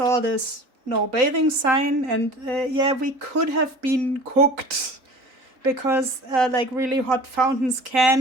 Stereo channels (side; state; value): left; late; 3.9 ms